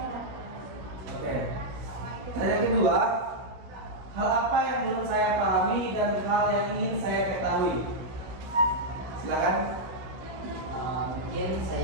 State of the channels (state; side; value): late; left; 16 ms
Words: Oke. Dan yang kedua, hal apa yang belum saya pahami dan hal yang ingin saya ketahui? Silakan. Mungkin